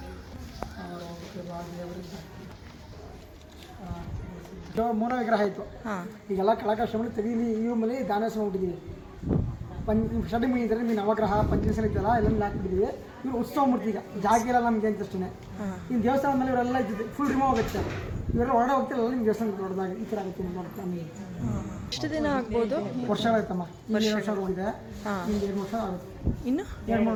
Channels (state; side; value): identical; both; correlation 1.00